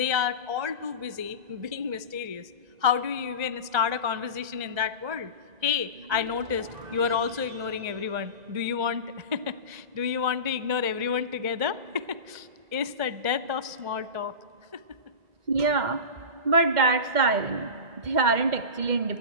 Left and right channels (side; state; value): left; late; 2.0 ms